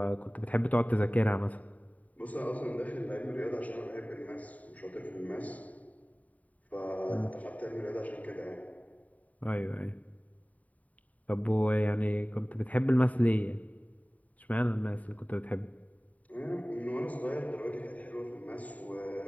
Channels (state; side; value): late; right; 0.071 ms